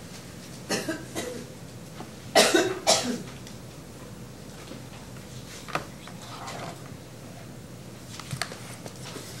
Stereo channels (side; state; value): both; identical; correlation 1.00